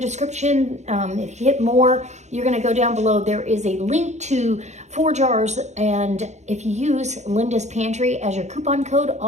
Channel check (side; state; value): left; late; 0.33 ms